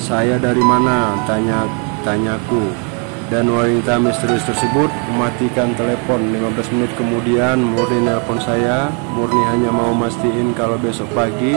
dari mana? Tanyaku. Dan wanita misterius tersebut mematikan telepon. 15 menit kemudian Murni nelpon saya. Murni hanya mau mastiin kalau besok pagi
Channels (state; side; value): quieter; left; 37.7 dB